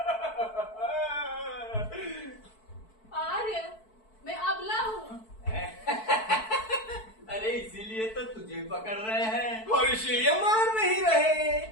आर्य, मैं अबला हूँ। अरे इसीलिए तो तुझे पकड़ रहे हैं और इसीलिए मार नहीं रहे।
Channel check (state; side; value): late; right; 4.6 ms